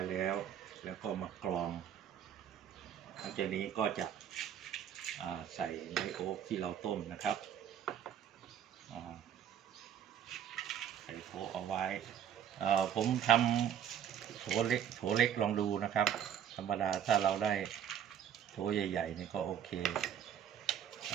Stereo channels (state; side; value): quieter; left; 9.3 dB